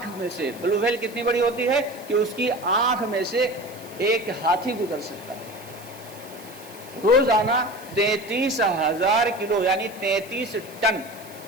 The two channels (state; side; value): noise; right; hiss, 20 dB below the sound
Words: میں سے بلو ویل کتنی بڑی ہوتی ہے کہ اس کی آنکھ میں سے ایک ہاتھی گزر سکتا ہے۔ روزانہ 33,000 کلو یعنی 33 ٹن